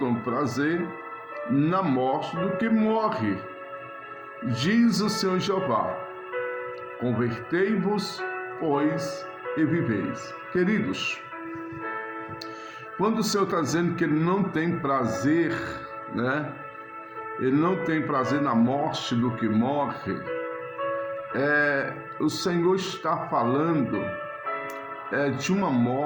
prazer na morte do que morre, diz o Senhor Jeová. Convertei-vos, pois, e viveis. Queridos, quando o Senhor está dizendo que Ele não tem prazer, Ele não tem prazer na morte do que morre, o Senhor está falando de uma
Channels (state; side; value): identical; both; correlation 1.00